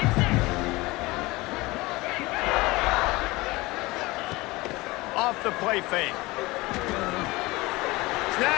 Off the play fake.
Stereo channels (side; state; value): right; quieter; 21.6 dB